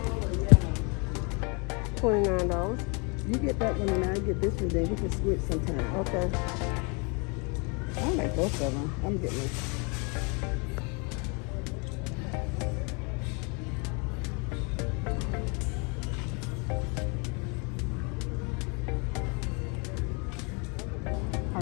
$29. You get that one and I get this one, then we can switch sometime. Okay. I like both of them. I'm getting this.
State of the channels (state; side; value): quieter; right; 32.6 dB